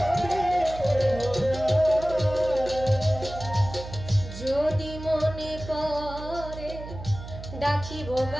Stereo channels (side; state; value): right; noise; hum, 12 dB below the sound